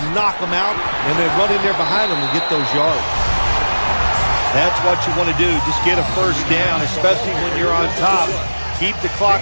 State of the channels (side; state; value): both; inverted; correlation -1.00